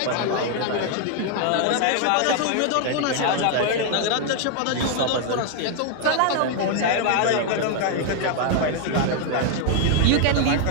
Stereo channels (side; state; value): both; different; correlation 0.00